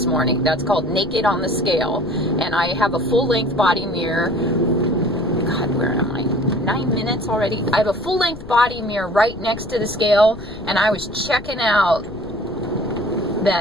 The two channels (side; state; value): left; noise; rumble, 16 dB below the sound